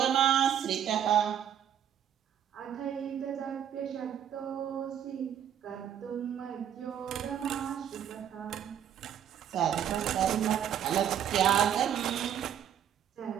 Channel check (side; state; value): left; quieter; 9.5 dB